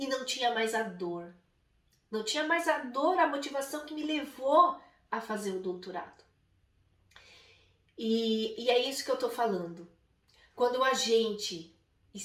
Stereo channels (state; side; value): identical; both; correlation 1.00